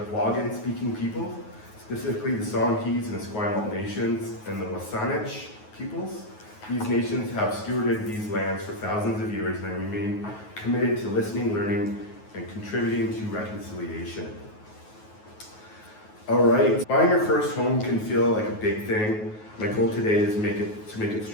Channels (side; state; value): right; late; 9.4 ms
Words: Wagan-speaking people, specifically the Songhees and Esquimalt nations and the Wasanich peoples. These nations have stewarded these lands for thousands of years and remain committed to listening, learning, and contributing to reconciliation. All right, buying your first home can feel like a big thing. My goal today is to make it